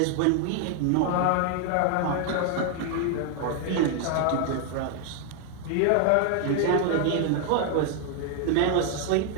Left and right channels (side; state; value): both; different; correlation 0.00